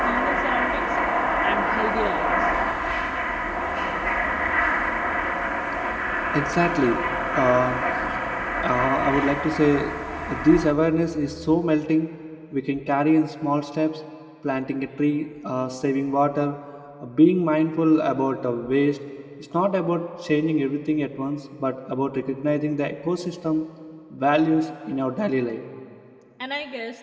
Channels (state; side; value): identical; both; correlation 1.00